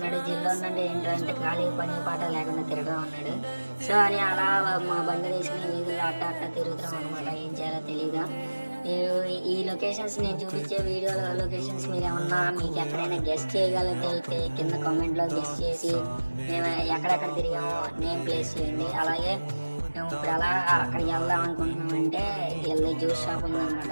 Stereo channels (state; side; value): inverted; both; correlation -1.00